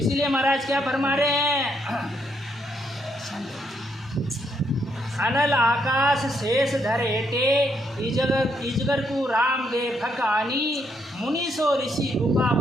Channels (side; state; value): both; normal; correlation 0.75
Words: महाराज क्या फरमा रहे हैं, अनल आकाश शेष धर हेटे, इजगर तू राम दे फकानी। मुनि सो ऋषि गुफा